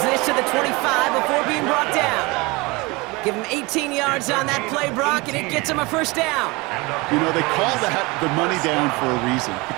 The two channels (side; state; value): left; quieter; 24.7 dB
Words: this to the 25 before being brought down. Give him 18 yards on that play, Brock, and it gets him a first down. You know, they call that the money down for a reason,